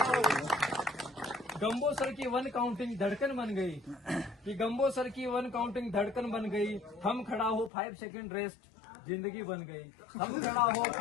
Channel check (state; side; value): drops out; right; at 7.7 s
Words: गंबोसर की 1 काउंटिंग धड़कन बन गई, कि गंबोसर की 1 काउंटिंग धड़कन बन गई। हम खड़ा हो 5 सेकंड रेस्ट, जिंदगी बन गई। हम खड़ा हो